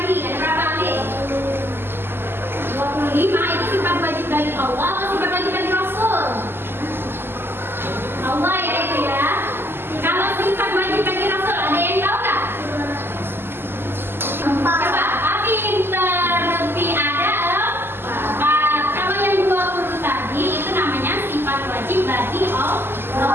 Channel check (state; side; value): late; left; 0.11 ms